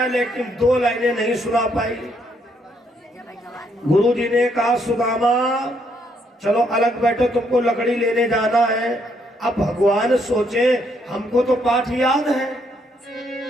लेकिन 2 लाइनें नहीं सुना पाई। गुरुजी ने कहा सुदामा चलो अलग बैठो, तुमको लकड़ी लेने जाना है। अब भगवान सोचे हमको तो पाठ याद है,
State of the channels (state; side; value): normal; both; correlation 0.72